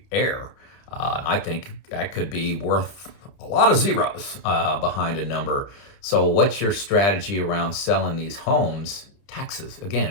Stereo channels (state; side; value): late; right; 30 ms